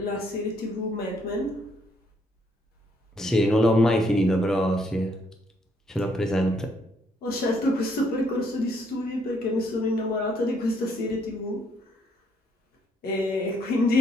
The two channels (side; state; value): both; normal; correlation 0.70